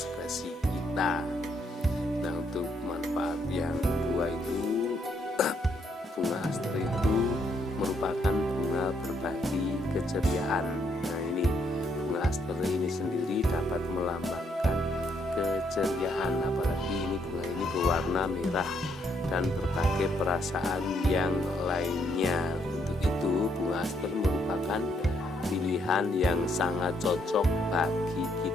kita. Nah, untuk manfaat yang kedua itu, bunga aster itu merupakan bunga berbagi keceriaan. Nah, ini bunga aster ini sendiri dapat melambangkan keceriaan, apalagi ini bunga ini berwarna merah dan berbagai perasaan yang lainnya. Untuk itu bunga aster merupakan pilihan yang sangat cocok bagi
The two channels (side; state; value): both; normal; correlation 0.73